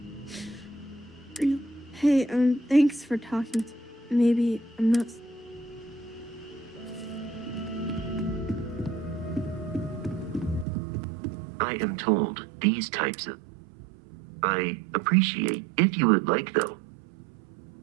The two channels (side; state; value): left; drops out; at 10.7 s